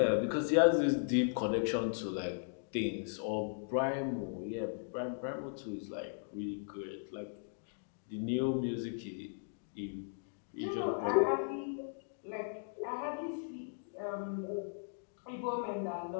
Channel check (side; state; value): right; silent; digital silence